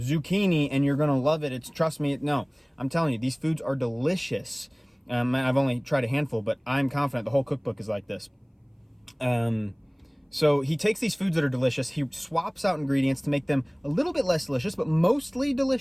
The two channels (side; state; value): both; identical; correlation 1.00